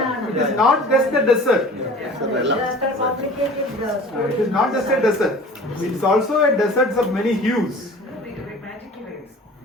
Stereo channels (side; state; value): both; normal; correlation 0.43